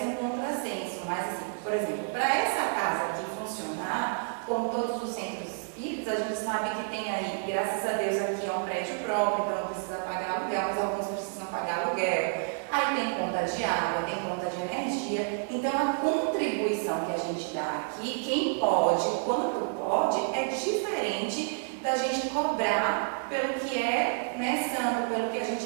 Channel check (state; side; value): silent; left; 58 dB below the other